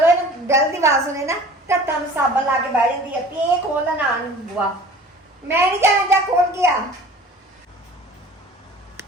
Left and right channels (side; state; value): both; normal; correlation 0.44